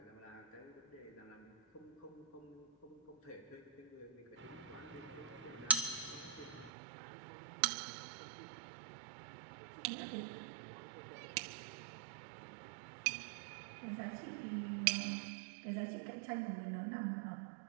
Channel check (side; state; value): left; drops out; at 6.7 s